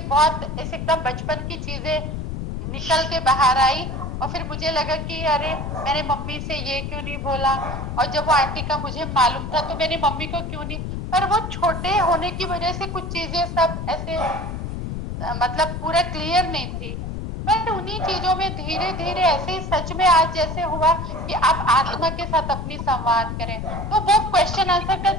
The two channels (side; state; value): left; noise; rumble, 5 dB below the sound